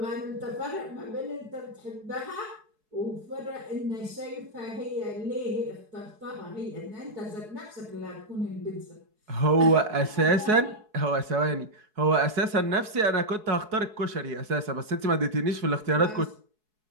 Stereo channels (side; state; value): left; late; 4.7 ms